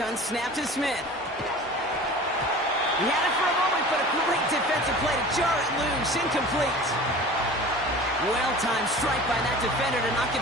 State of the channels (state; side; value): normal; both; correlation 0.40